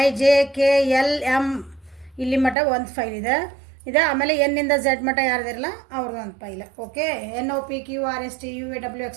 J K L M ಇಲ್ಲಿ ಮಟ್ಟ ಒಂದು ಫೈಲ್ ಇದೆ. ಆಮೇಲೆ ಎನ್ನಿಂದ ಝೆಡ್ ಮಟ್ಟ ಯಾರ್ದಿರಲ್ಲ ಅವ್ರದ್ದು ಒಂದು file. Okay, N O P Q R S T U V W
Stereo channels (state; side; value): drops out; left; at 2.6 s